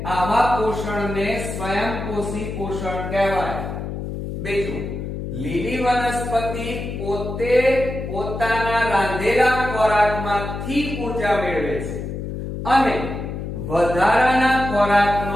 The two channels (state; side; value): noise; left; hum, 6 dB below the sound